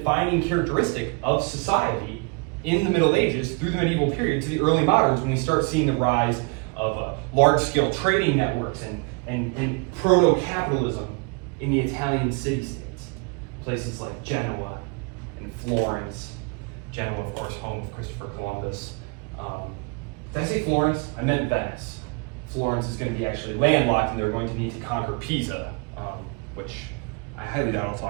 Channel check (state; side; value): quieter; left; 31.8 dB